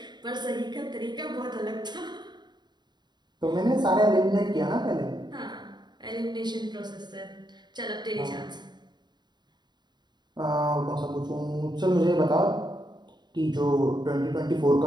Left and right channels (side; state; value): left; late; 0.21 ms